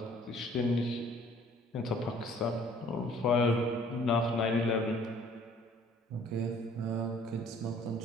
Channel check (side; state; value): both; normal; correlation 0.55